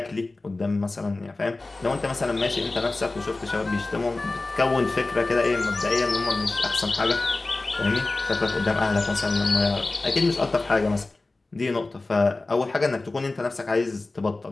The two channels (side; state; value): right; quieter; 3.2 dB